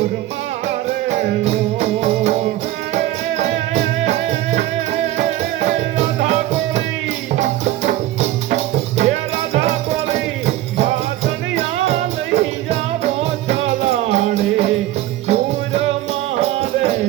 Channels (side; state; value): left; quieter; 14.8 dB